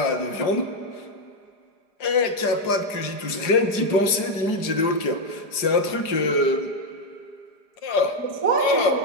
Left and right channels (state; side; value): late; right; 4.8 ms